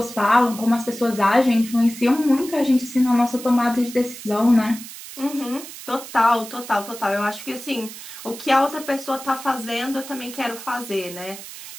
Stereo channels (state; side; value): noise; right; hiss, 13 dB below the sound